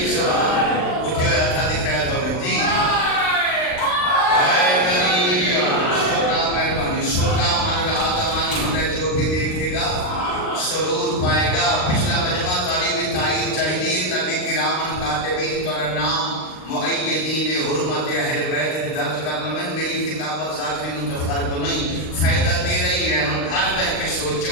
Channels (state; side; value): late; right; 39 ms